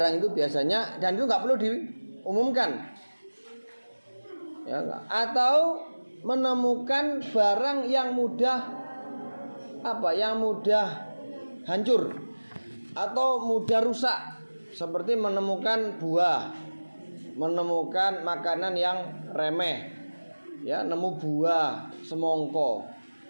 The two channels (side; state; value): both; inverted; correlation -1.00